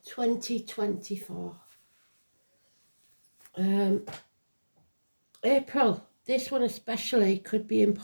2024. April, this one especially could be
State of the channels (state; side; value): inverted; both; correlation -1.00